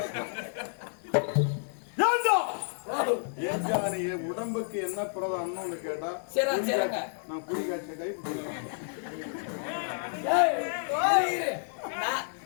உடம்புக்கு என்ன பிரதானம்னு கேட்டா நான் குடி காய்ச்ச கை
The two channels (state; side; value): silent; right; digital silence